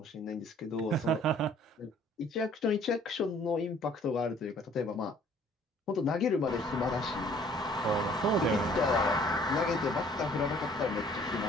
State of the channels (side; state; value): both; normal; correlation 0.57